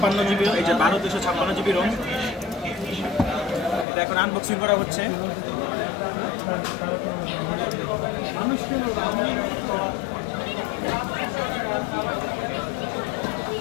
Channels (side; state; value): right; drops out; at 3.9 s